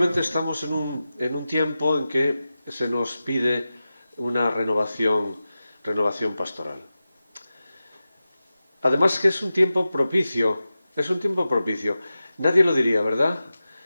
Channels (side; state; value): both; inverted; correlation -0.94